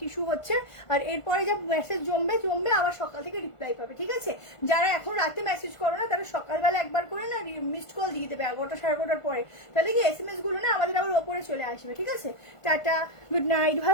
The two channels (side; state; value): right; late; 1.5 ms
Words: ইস্যু হচ্ছে। আর এরপরে যা মেসেজ জমবে আবার সকাল থেকে রিপ্লাই পাবে, ঠিক আছে? যারা এখন রাতে মেসেজ করো না, তারা সকালবেলা একবার করে না মিসড কল দিয়ে দেবে 11টা 11:30 পরে, তাহলে কি SMS গুলো না আমাদের আবার ওপরে চলে আসবে, ঠিক আছে? টাটা, গুড নাইট,